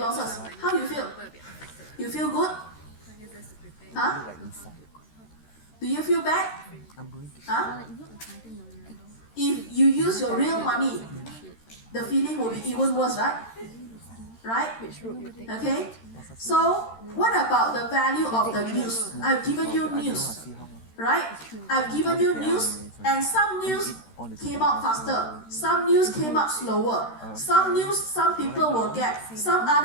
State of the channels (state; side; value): late; right; 13 ms